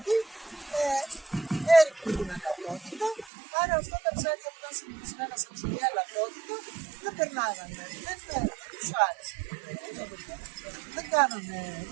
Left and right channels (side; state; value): left; drops out; at 3.3 s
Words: έριχνε την αλατότητα, άρα αυτά τα ψάρια που ήταν συνηθισμένα σε ψηλή αλατότητα δεν περνάγανε, δεν τους άρεσε.